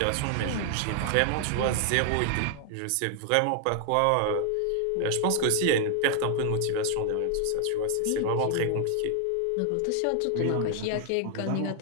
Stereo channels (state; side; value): different; both; correlation 0.00